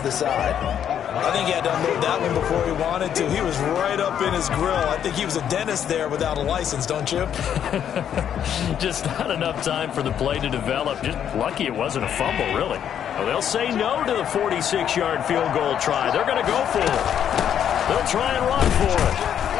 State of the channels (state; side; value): quieter; right; 9.3 dB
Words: the side. I think he had to unload that one before he wanted to. He was right up in his grill. I think he was a dentist there without a license, don't you? Just not enough time for the play to develop. Just lucky it wasn't a fumble, really. Well, they'll say no to the 46-yard field goal try. They're going to go for it. They'll try and run for it.